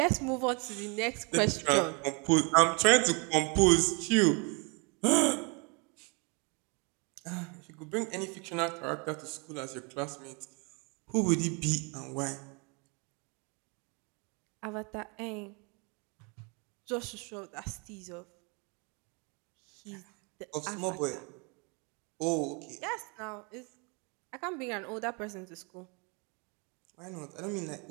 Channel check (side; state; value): left; quieter; 32.8 dB